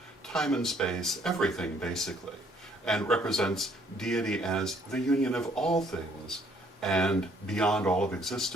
time and space, everything basically, and represents deity as the union of all things, and beyond all of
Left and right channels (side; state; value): both; normal; correlation 0.63